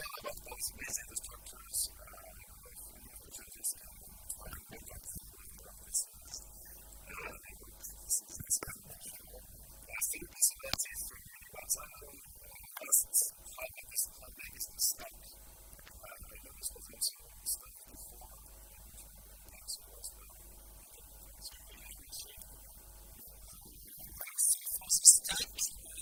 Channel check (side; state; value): both; identical; correlation 1.00